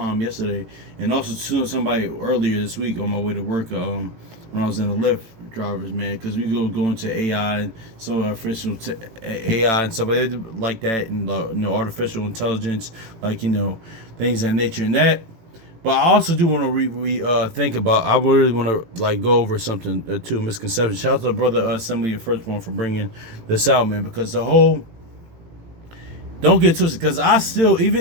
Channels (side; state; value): left; late; 18 ms